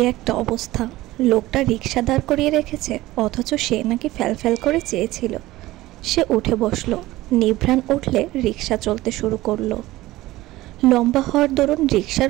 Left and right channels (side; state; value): left; quieter; 17.5 dB